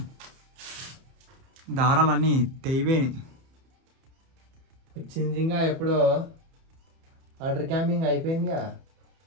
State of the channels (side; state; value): left; late; 31 ms